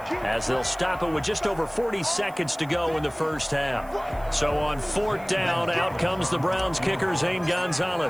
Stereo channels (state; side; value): noise; right; hiss, 25 dB below the sound